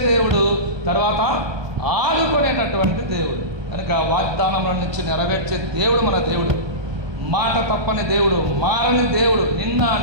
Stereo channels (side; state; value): left; late; 1.2 ms